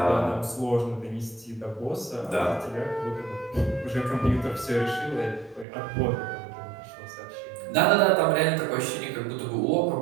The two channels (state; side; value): drops out; left; at 5.7 s